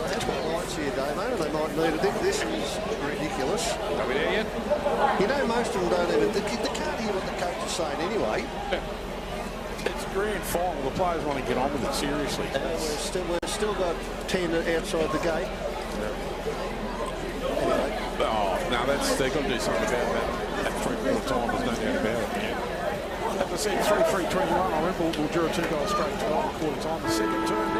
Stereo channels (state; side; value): identical; both; correlation 1.00